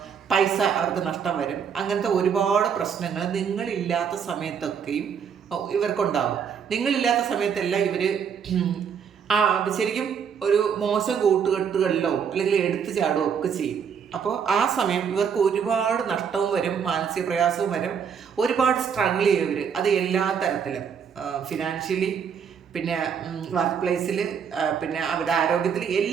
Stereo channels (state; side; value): quieter; left; 7.1 dB